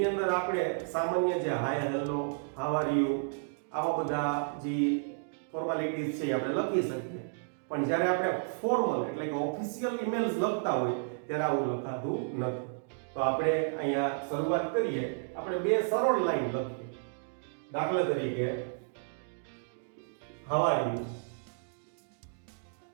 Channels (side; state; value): left; silent; digital silence